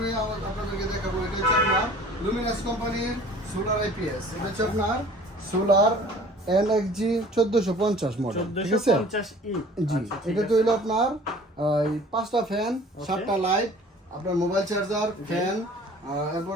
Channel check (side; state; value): both; normal; correlation 0.48